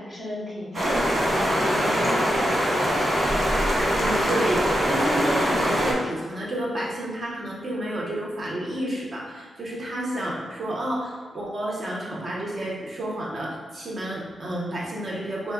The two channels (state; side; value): normal; both; correlation 0.86